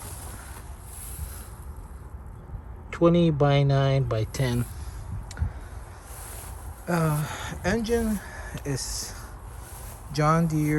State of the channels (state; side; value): identical; both; correlation 1.00